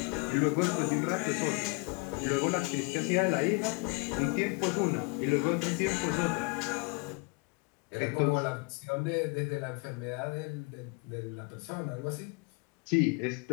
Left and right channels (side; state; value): right; quieter; 29.7 dB